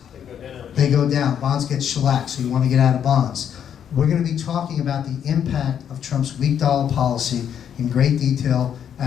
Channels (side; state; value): right; quieter; 8.8 dB